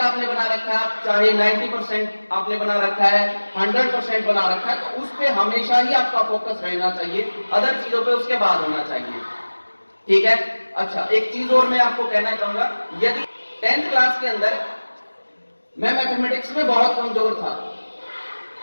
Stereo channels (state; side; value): inverted; both; correlation -1.00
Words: आपने बना रखा है, चाहे 90% आपने बना रखा है, 100% बना रखा है, तो उस पर हमेशा ही आपका फोकस रहना चाहिए, अदर चीजों पे उसके बाद होना चाहिए। ठीक है। अच्छा, एक चीज और मैं आपको कहना चाहूंगा, यदि 10th क्लास के अंदर मैं मैथमेटिक्स में बहुत कमजोर था,